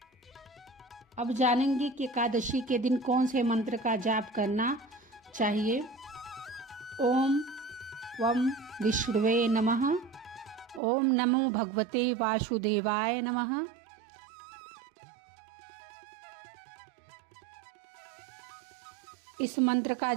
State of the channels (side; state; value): left; drops out; at 10.8 s